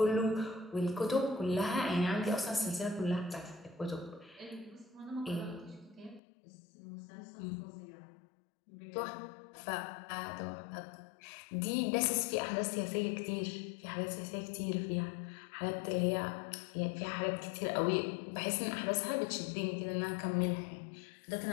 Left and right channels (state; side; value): drops out; right; at 6.2 s